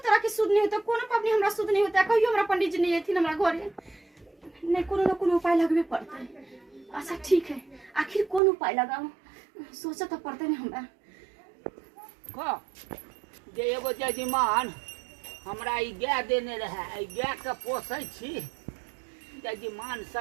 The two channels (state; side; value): drops out; left; at 8.4 s